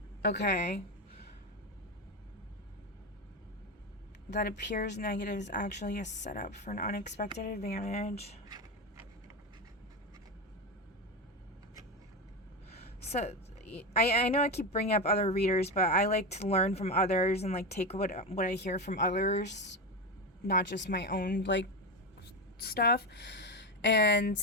Okay. That appears negative is actually a setup for an unexpected advantage. So, I know I keep bringing up other readers, but I like to learn from others and, like, take what I hear from others, not just my own, like, stuff. And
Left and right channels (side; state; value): both; normal; correlation 0.16